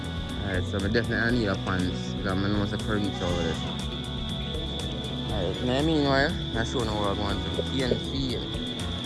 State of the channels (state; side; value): identical; both; correlation 1.00